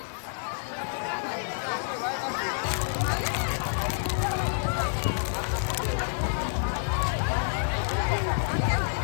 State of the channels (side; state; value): right; silent; digital silence